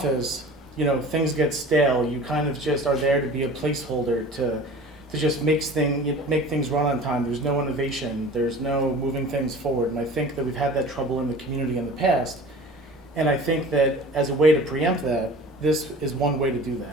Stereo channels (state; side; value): normal; both; correlation 0.41